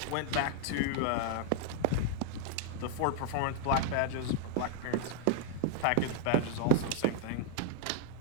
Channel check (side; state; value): both; different; correlation -0.01